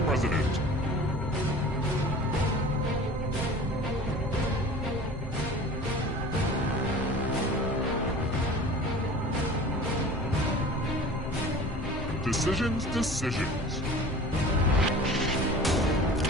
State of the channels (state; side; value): normal; both; correlation 0.41